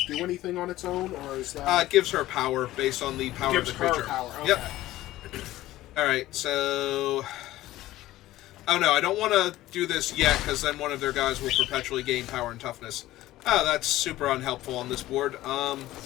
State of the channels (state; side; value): quieter; right; 15.8 dB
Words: do anything on its own, or is that... It gives her power based on the power of the creature. Gives her power, okay. Yep. Alright, so... Oh no, I don't want to do this yet, because then one of their guys will perpetually gain power and toughness. Oh, that's super unhelpful on this board.